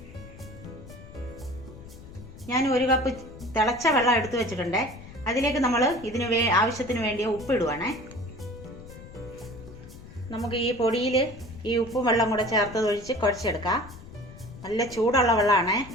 ഞാൻ 1 കപ്പ് തിളച്ച വെള്ളം എടുത്തു വെച്ചിട്ടുണ്ട്. അതിലേക്ക് നമ്മൾ ഇതിന് ആവശ്യത്തിന് വേണ്ടിയ ഉപ്പ് ഇടുവാണേ. നമുക്ക് ഈ പൊടിയിൽ ഈ ഉപ്പും വെള്ളം കൂടെ ചേർത്ത് ഒഴിച്ച് കുഴച്ചെടുക്കാം. നല്ല ചൂടുള്ള വെള്ളമാണ്.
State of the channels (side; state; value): left; noise; rumble, 17 dB below the sound